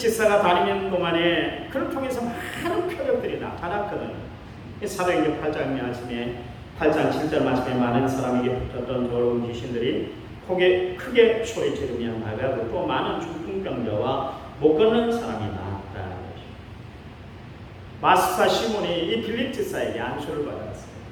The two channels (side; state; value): both; identical; correlation 1.00